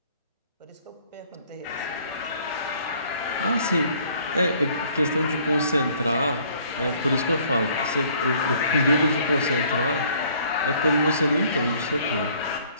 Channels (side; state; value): both; inverted; correlation -0.59